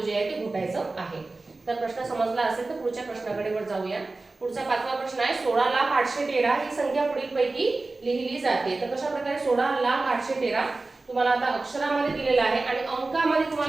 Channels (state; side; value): quieter; left; 3.4 dB